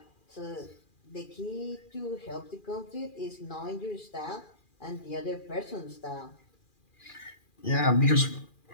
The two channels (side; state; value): right; late; 2.4 ms